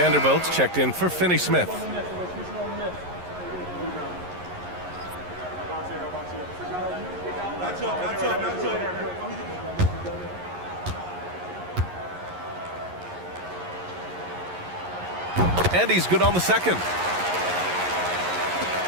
checked in for Finney-Smith. And he's good on the second.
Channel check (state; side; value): late; left; 11 ms